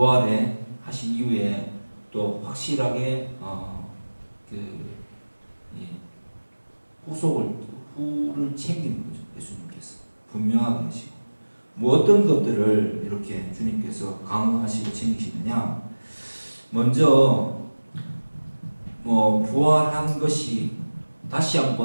하신 이후에 또 확실하게 후를 챙기는 거죠. 예수님께서 분명하게 하시고 뭐 어떤 것들을 이렇게 주님께서 강화하시고 챙기시느냐. 먼저 부활한 것이 다시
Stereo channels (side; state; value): both; inverted; correlation -1.00